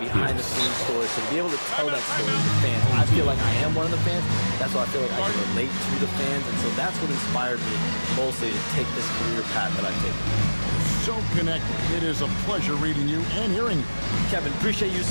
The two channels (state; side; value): inverted; both; correlation -1.00